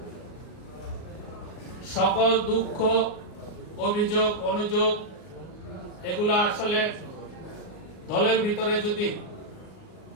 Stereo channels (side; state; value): right; late; 39 ms